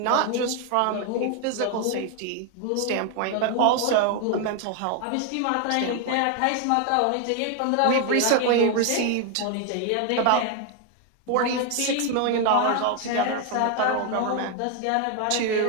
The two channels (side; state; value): both; different; correlation 0.01